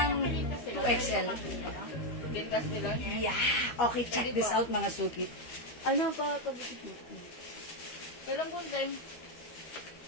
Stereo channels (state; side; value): late; right; 12 ms